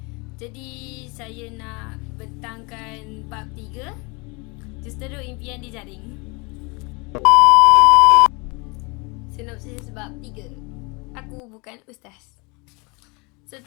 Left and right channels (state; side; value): quieter; right; 28.6 dB